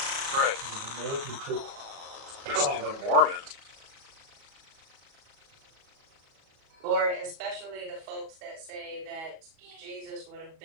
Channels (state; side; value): late; left; 37 ms